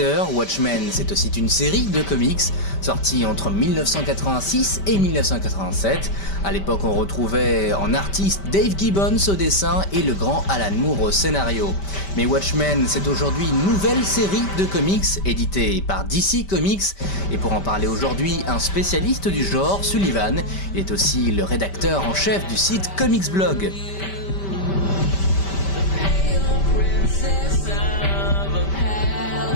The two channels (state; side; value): late; right; 5.1 ms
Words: Watchmen c'est aussi une série de comics sortie entre 1986 et 1987. À l'époque on retrouvait en artiste Dave Gibbons au dessin et le grand Alan Moore au scénario. Mais Watchmen c'est aujourd'hui une nouvelle série de comics éditée par DC Comics et pour en parler aujourd'hui un spécialiste du genre, Sullivan, il est aussi le rédacteur en chef du site Comics Blog.